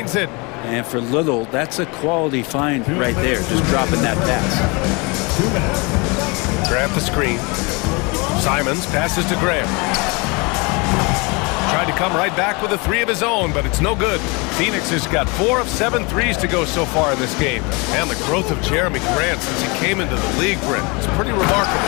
it. And for Little, that's a quality find right there, just dropping that pass. Grab the screen. Simons passes to Graham. Tried to come right back with a three of his own, but it's no good. Phoenix has got 4 of 7 threes to go so far in this game. And the growth of Jeremy Grant since he came into the league, Brent, is pretty remarkable.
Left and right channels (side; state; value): right; quieter; 28.7 dB